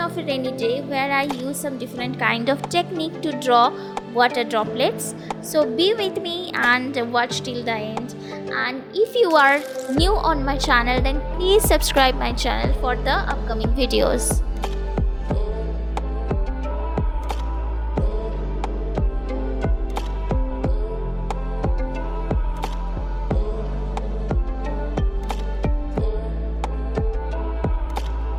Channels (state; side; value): identical; both; correlation 1.00